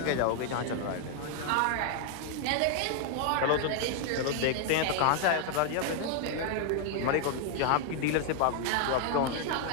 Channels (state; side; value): different; both; correlation 0.00